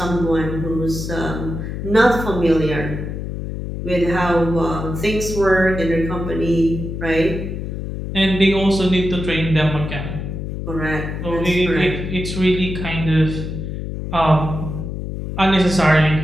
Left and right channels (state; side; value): noise; left; hum, 5 dB below the sound